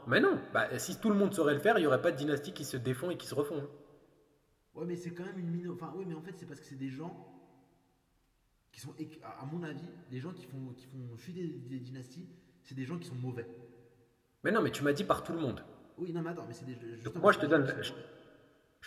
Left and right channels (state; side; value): identical; both; correlation 1.00